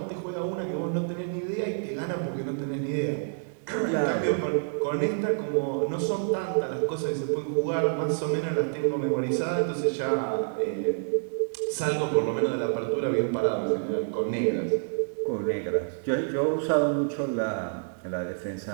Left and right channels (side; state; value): left; silent; digital silence